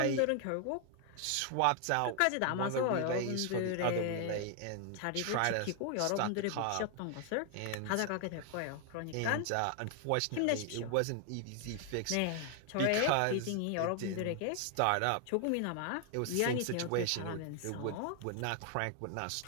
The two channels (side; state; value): both; different; correlation 0.00